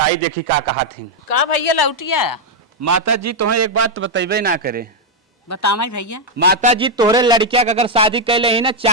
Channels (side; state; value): both; normal; correlation 0.00